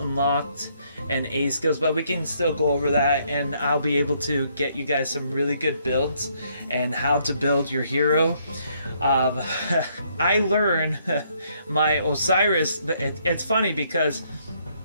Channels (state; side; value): inverted; both; correlation -0.70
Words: and A skills, but we can still go over that, and I'll be able to get you guys some really good builds and how to build your hero. I learned my Osiris. It's funny because,